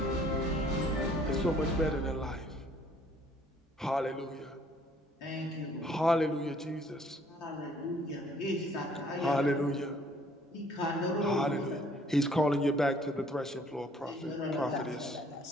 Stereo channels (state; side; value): normal; both; correlation 0.60